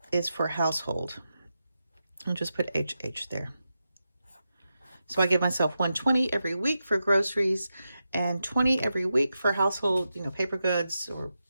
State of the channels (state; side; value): inverted; both; correlation -0.89